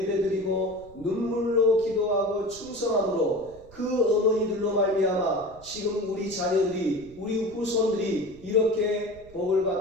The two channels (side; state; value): right; noise; rumble, 23 dB below the sound